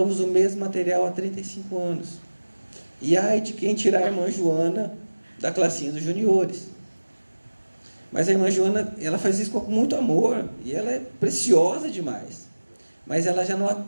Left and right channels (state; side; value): inverted; both; correlation -1.00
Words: usa o mesmo material há 35 anos. E ai de quem tirar a irmã Joana da classinha dos juniores. Mas a irmã Joana, ela faz isso com muito amor, e ela é preciosa demais. Mas ela já não